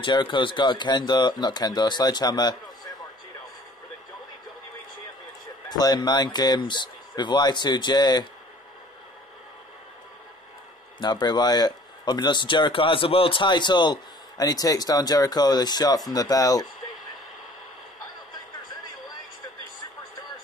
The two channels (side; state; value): both; normal; correlation 0.52